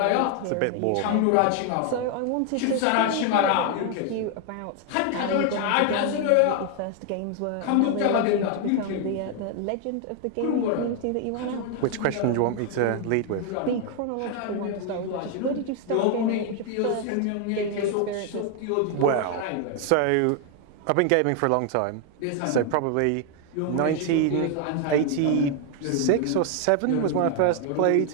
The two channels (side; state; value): both; different; correlation 0.00